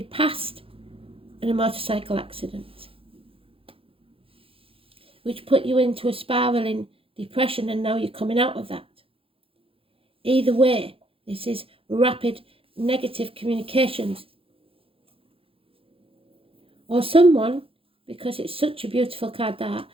passed in a motorcycle accident, which put you into a spiraling depression, and now you're coming out of that. Either way, this is rapid negative communications. Or someone, because it's such a beautiful card that,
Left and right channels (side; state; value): left; late; 0.27 ms